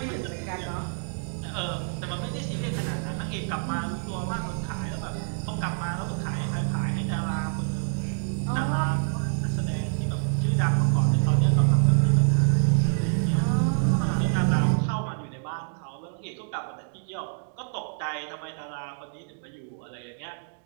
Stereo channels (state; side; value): silent; left; digital silence